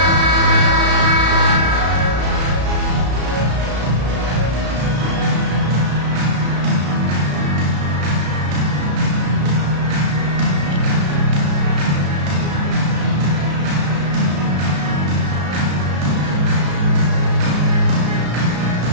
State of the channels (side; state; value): left; late; 34 ms